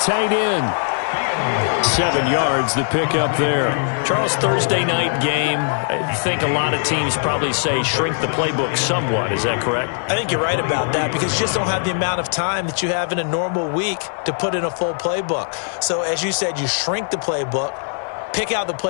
end. 7 yards, the pickup there. Charles, Thursday night game. I think a lot of teams probably say shrink the playbook somewhat. Is that correct? I think you're right about that, because you just don't have the amount of time that you have in a normal week to put in a full playbook. So as you said, you shrink the playbook, pick out the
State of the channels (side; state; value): right; silent; 66 dB below the other